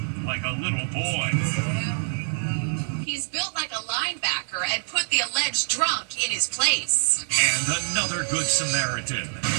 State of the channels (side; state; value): left; silent; digital silence